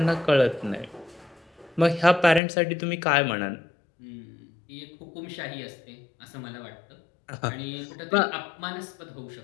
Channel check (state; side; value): drops out; right; at 2.4 s